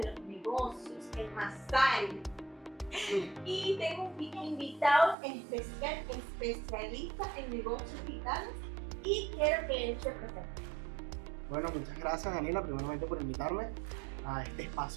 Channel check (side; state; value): left; drops out; at 5.2 s